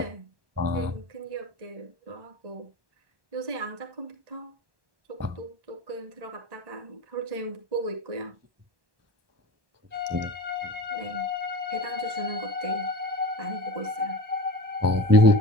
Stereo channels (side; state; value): left; late; 1.1 ms